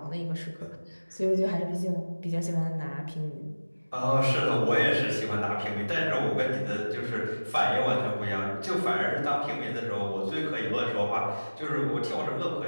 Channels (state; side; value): inverted; both; correlation -1.00